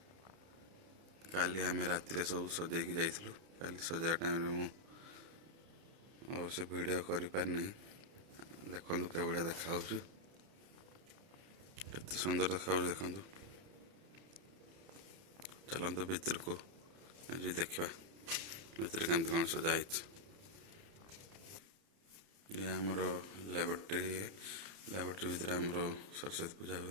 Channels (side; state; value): left; late; 30 ms